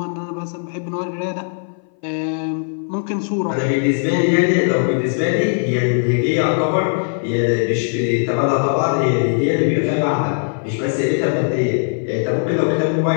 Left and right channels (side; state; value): right; silent; 59 dB below the other